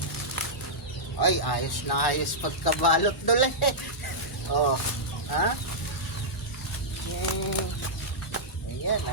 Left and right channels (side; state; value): both; normal; correlation -0.10